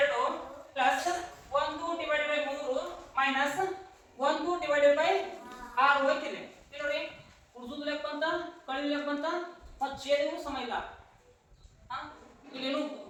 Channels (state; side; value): identical; both; correlation 1.00